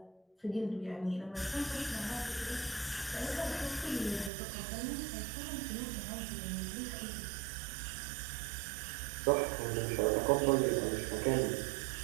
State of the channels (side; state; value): left; drops out; at 4.3 s